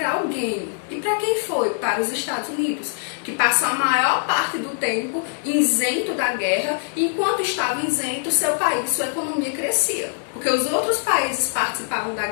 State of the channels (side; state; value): right; silent; digital silence